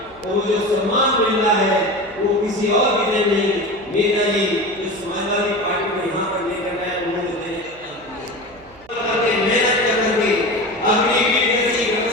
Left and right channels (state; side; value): noise; right; hum, 26 dB below the sound